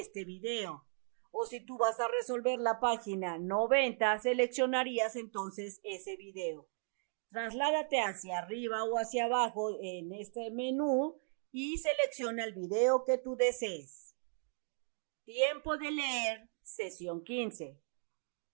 video. O si tú vas a resolver la página 90, seleccionarías entonces ese video. Trasládate hacia arriba o hacia abajo en este menú y selecciona el video que tú desees. Tiempo de leer, sesión 15.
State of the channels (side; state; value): left; silent; 53 dB below the other